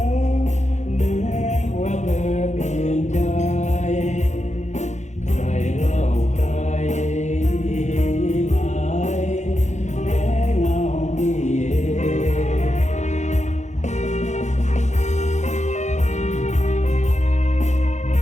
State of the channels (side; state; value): right; late; 0.34 ms